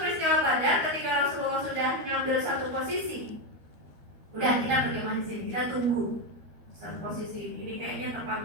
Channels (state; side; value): late; left; 12 ms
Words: Badar, ketika Rasulullah sudah mengambil satu posisi, udah kita berkemah di sini, kita tunggu satu posisi ini kayaknya